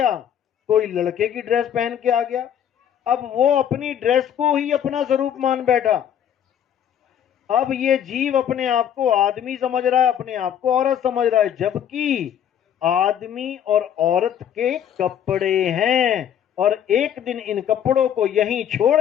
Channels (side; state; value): right; quieter; 9.5 dB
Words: कोई लड़के की ड्रेस पहन के आ गया। अब वो अपनी ड्रेस को ही अपना स्वरूप मान बैठा। अब ये जीव अपने आप को आदमी समझ रहा है, अपने आप को औरत समझ रहा है, जबकि आदमी और औरत के कपड़े हैं। और एक दिन इन कपड़ों को यहीं छोड़